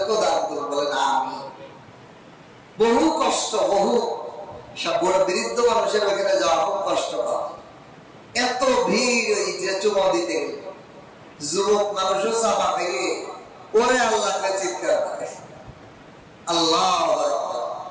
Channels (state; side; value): identical; both; correlation 1.00